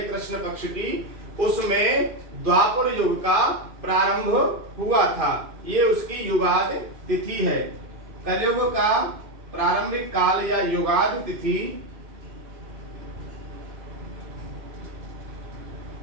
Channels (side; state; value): left; late; 2.5 ms